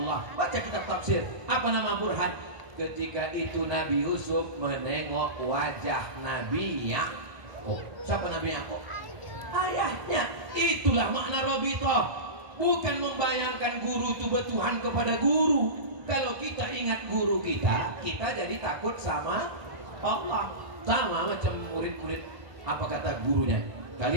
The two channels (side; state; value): left; late; 1.3 ms